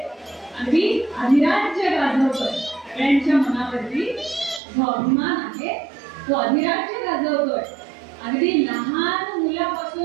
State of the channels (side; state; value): left; drops out; at 4.6 s